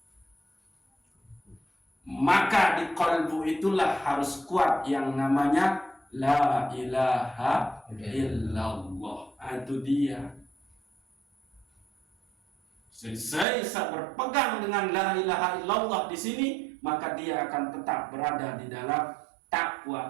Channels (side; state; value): left; drops out; at 13.5 s